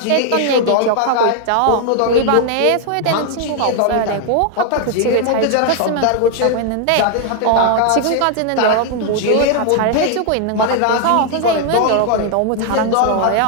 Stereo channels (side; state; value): both; different; correlation 0.00